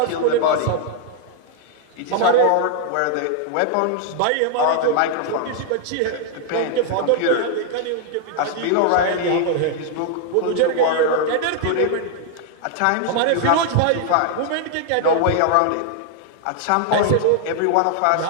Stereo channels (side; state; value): both; different; correlation 0.00